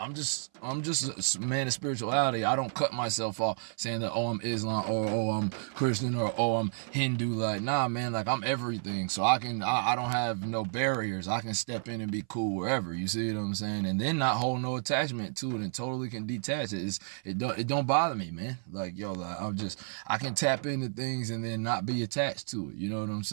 just a man of spirituality. I don't cut myself off saying that, oh, I'm Islam, or oh, I'm Christian, or oh, I'm Hindu. Like, nah, man, like I'm everything. So I don't have no barriers. I can step in and be cool wherever. You see what I'm saying? And then not hold no attachment to it and totally can detach it. It don't bother me, man. Like, yo, like, I can tap into things and then not be attached to it. You know what I'm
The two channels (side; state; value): left; silent; 57 dB below the other